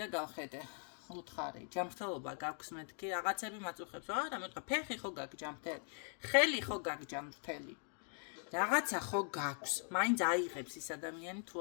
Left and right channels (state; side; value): silent; right; 50 dB below the other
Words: გავხედე უთხარი ჯანმრთელობა გაქვს მეთქი რაღაცები მაწუხებს არა მე ვთქვა ფეხი ხო გაქვს ჯანმრთელი ხელი ხო გაქვს ჯანმრთელი რაღაცა ხო გაქვს მაინც აიღებს ის ადამიანი თუ